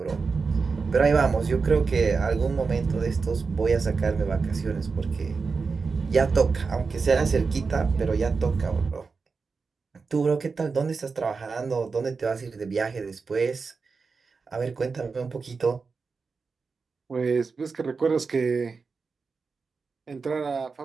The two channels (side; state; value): left; quieter; 4.7 dB